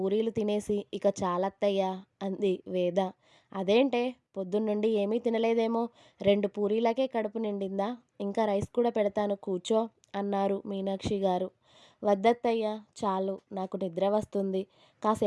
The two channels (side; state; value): both; identical; correlation 1.00